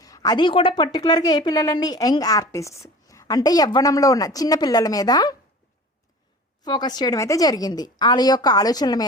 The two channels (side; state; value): both; normal; correlation 0.40